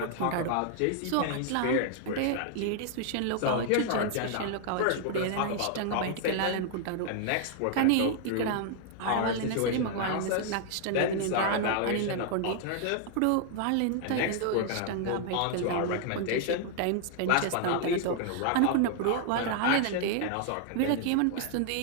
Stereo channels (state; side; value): different; both; correlation 0.00